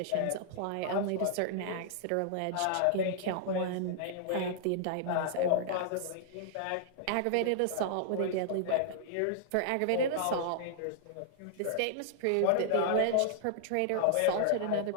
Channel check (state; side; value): different; both; correlation -0.01